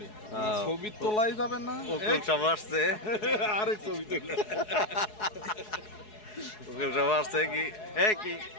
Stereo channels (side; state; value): right; late; 4.7 ms